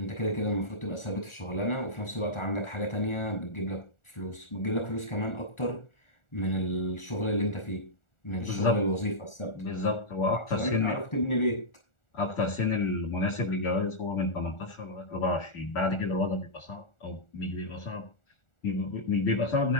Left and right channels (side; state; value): right; late; 1.4 ms